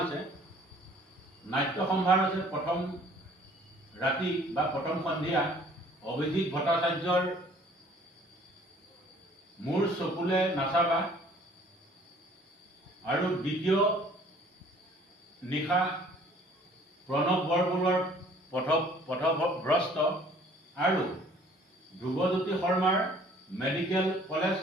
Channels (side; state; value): both; normal; correlation 0.55